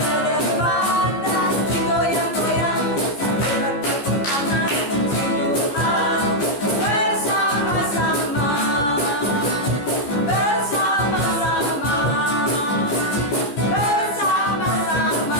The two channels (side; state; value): right; late; 14 ms